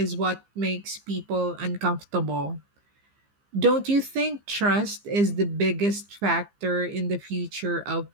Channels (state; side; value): late; left; 15 ms